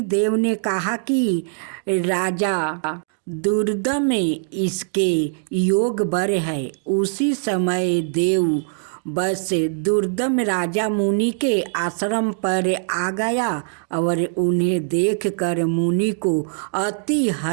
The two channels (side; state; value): left; silent; digital silence